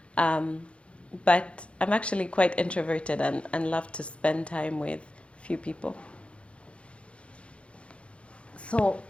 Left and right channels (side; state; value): right; late; 0.060 ms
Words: Um, but I'm actually quite introverted and love to spend time with few people. So,